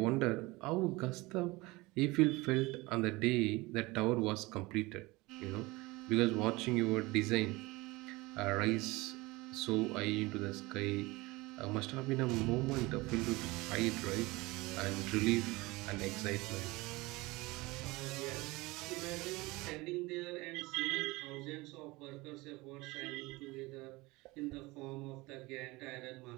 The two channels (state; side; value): quieter; left; 22.3 dB